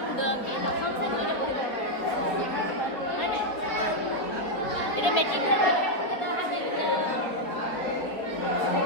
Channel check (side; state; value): right; late; 4.0 ms